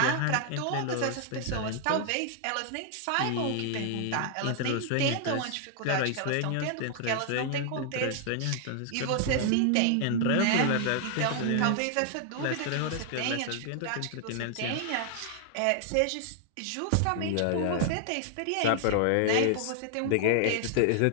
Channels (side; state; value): both; different; correlation 0.00